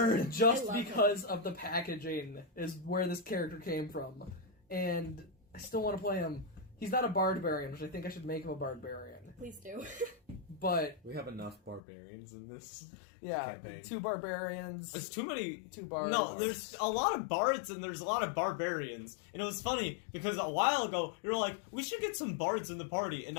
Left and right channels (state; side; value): drops out; right; at 11.8 s